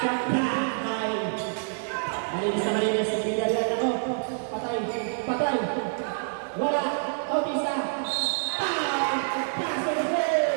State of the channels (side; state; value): left; silent; digital silence